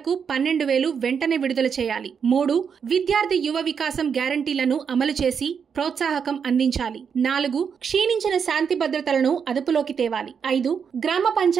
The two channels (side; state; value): left; quieter; 6.8 dB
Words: 12,000 వెంటనే విడుదల చేయాలి. 3, విద్యార్థి యువ వికాసం గ్యారంటీలను అమలు చేసి ప్రోత్సాహకం అందించాలి. 4, క్షీణించిన శాంతి భద్రతలను అదుపులోకి తేవాలి. 5, గ్రామ